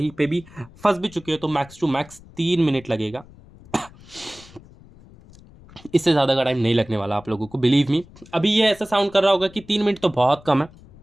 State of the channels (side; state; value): left; noise; rumble, 23 dB below the sound